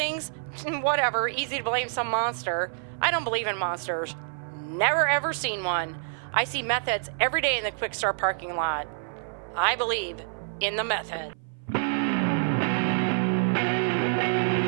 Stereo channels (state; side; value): silent; left; 57 dB below the other